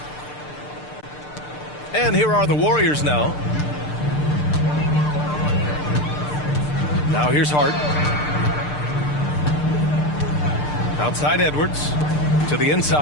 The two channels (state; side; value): late; right; 6.7 ms